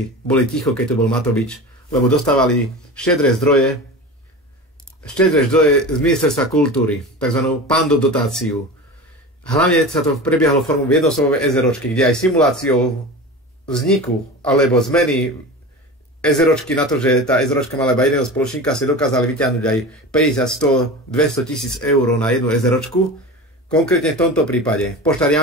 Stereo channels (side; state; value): both; normal; correlation 0.31